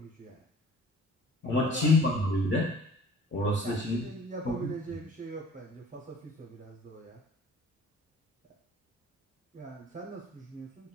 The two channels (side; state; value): both; normal; correlation 0.51